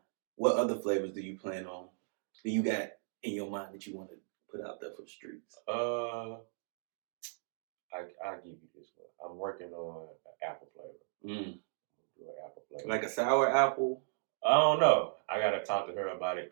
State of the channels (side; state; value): left; silent; digital silence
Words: what other flavors do you plan on? Do you got in your mind that you want to put out there for the streets? I'll give you this one. I'm working on an apple flavor. Do an apple flavor. Like a sour apple? I don't know. I gotta talk to her about